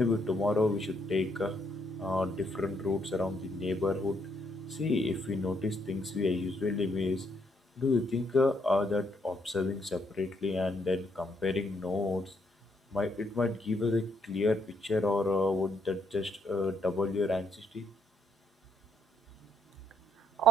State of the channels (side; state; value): both; normal; correlation 0.73